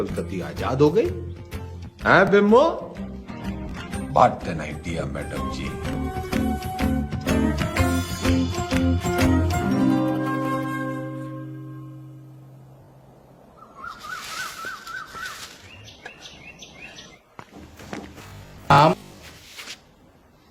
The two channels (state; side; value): identical; both; correlation 1.00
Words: कती आजाद हो गई है बिम्बो? बात एन आइडिया मैडम जी।